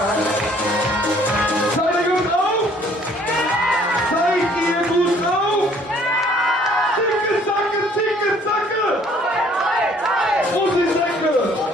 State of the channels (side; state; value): both; normal; correlation 0.59